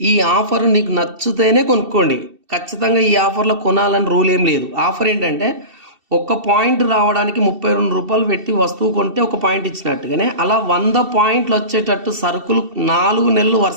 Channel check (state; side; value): late; left; 2.7 ms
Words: ఈ ఆఫర్ నీకు నచ్చితేనే కొనుక్కోండి. ఖచ్చితంగా ఈ ఆఫర్లో కొనాలని రూల్ ఏం లేదు. ఆఫర్ ఏంటంటే, ఒక పాయింట్ రావడానికి 32 రూపాయలు పెట్టి వస్తువు కొంటే ఒక పాయింట్ ఇచ్చినట్టుగానే అలా 100 పాయింట్లు వచ్చేటట్టు సరుకులు 4 నెలలు